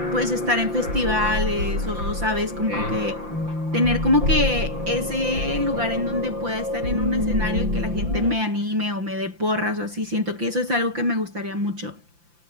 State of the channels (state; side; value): late; left; 5.8 ms